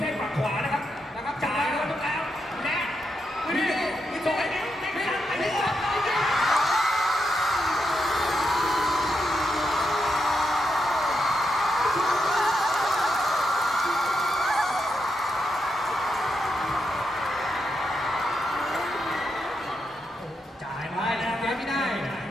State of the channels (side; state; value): both; normal; correlation 0.83